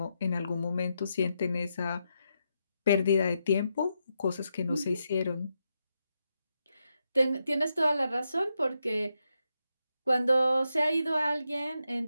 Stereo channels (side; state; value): both; inverted; correlation -0.84